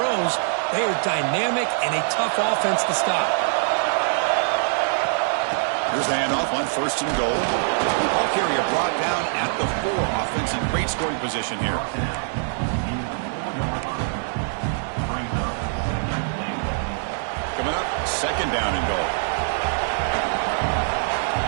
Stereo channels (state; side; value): silent; left; digital silence